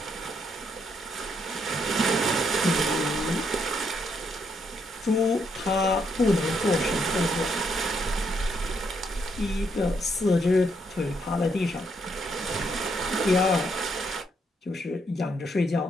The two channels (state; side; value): normal; both; correlation 0.75